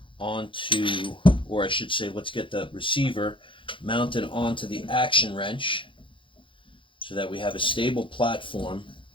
onto, or I should say, let's get the receiver mounted onto the action wrench so that we have a stable platform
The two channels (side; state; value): right; late; 0.25 ms